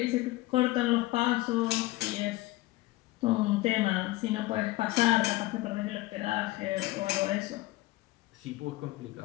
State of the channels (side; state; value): right; quieter; 18.6 dB